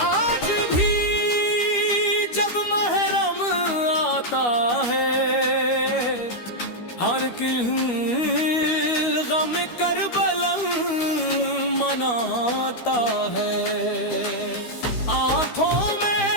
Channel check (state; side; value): late; right; 13 ms